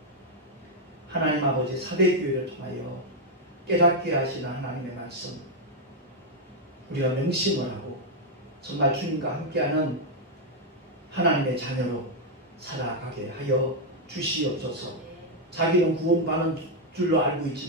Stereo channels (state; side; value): normal; both; correlation 0.00